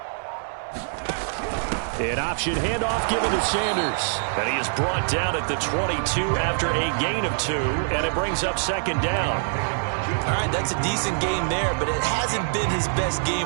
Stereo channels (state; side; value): silent; left; 58 dB below the other